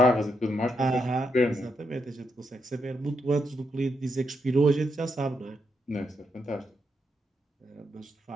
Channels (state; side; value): normal; both; correlation 0.81